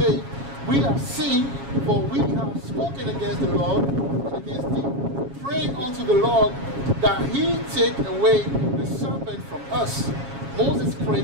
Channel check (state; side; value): late; left; 7.3 ms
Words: we have sinned, for we have spoken against the Lord and against thee. praying unto the Lord that he take away the serpent from us. Moses